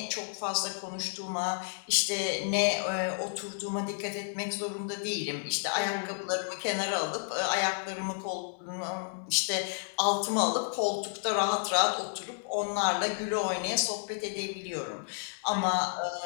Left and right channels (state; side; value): silent; right; digital silence